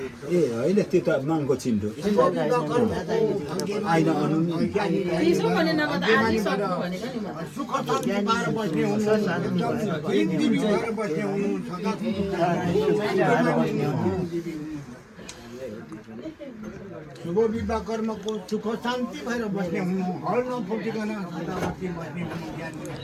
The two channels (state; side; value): identical; both; correlation 1.00